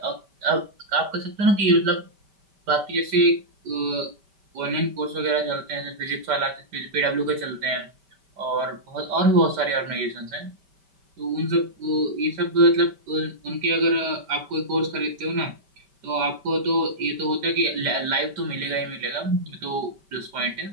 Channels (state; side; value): late; left; 5.1 ms